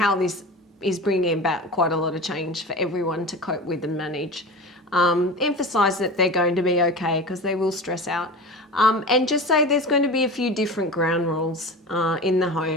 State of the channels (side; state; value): both; normal; correlation 0.31